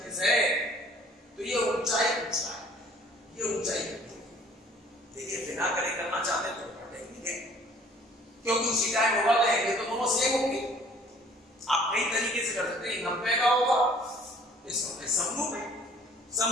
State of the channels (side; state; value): both; normal; correlation 0.54